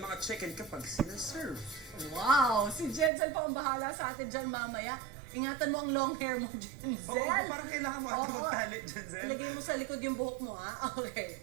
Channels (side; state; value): left; drops out; at 3.1 s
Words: mga chicken kapag sinaserve. Wow! Si Jensen pa ang bahala sa atin dyan mamaya. Ingatan mo ang long hair mo, Jensen. Oo, parang kailangan mo ata Oo. magtalit, Jensen. Ilagay mo sa likod yung buhok mo, ha? Okay.